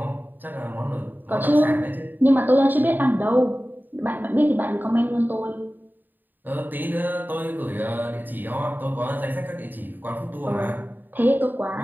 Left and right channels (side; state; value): left; late; 0.090 ms